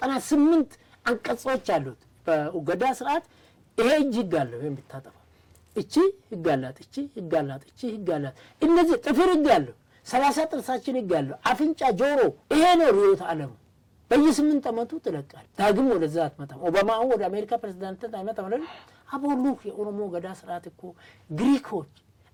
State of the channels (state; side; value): identical; both; correlation 1.00